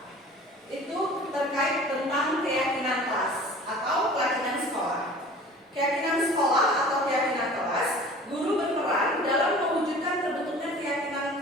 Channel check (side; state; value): both; normal; correlation 0.44